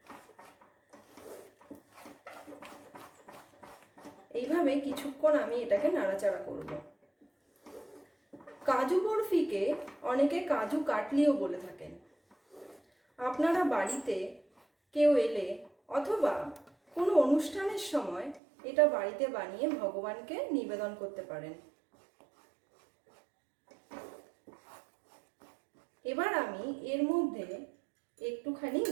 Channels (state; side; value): drops out; left; at 18.4 s